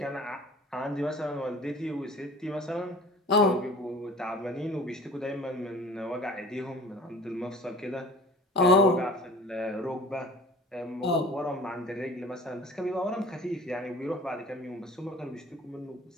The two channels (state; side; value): normal; both; correlation 0.44